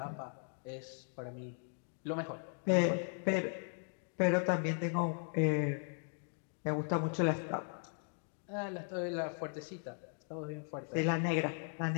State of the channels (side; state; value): right; silent; 53 dB below the other